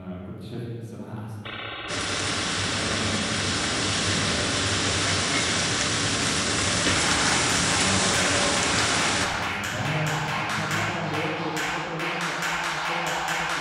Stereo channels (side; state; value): both; identical; correlation 1.00